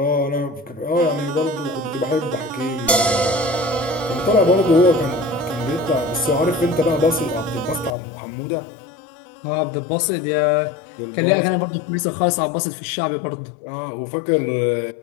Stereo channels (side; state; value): right; drops out; at 8.0 s